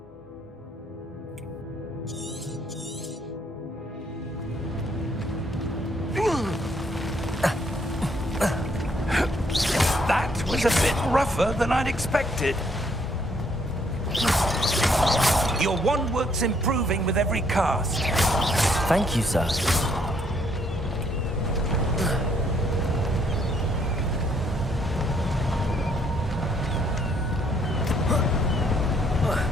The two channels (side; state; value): both; normal; correlation 0.68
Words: That was a bit rougher than I'd expected. Your wand work's improving with every cast. Thank you, sir.